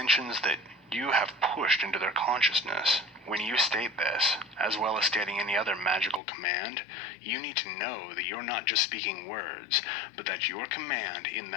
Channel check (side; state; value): right; drops out; at 6.2 s